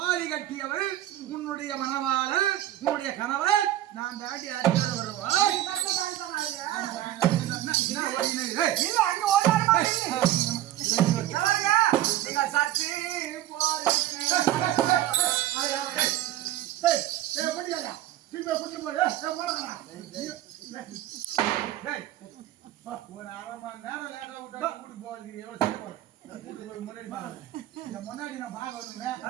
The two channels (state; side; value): quieter; left; 13.8 dB